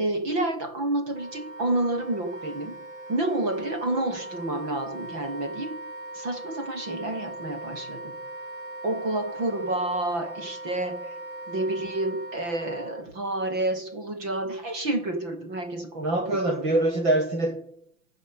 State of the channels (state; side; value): late; left; 5.9 ms